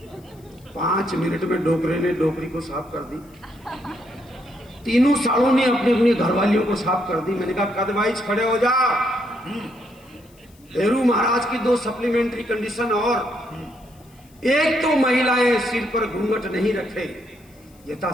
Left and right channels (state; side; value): noise; left; hiss, 30 dB below the sound